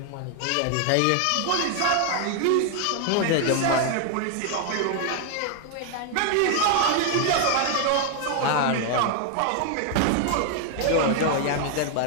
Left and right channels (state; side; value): different; both; correlation 0.00